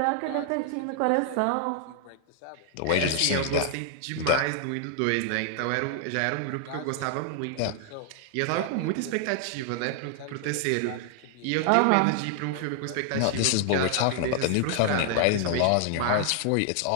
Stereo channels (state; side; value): different; both; correlation 0.00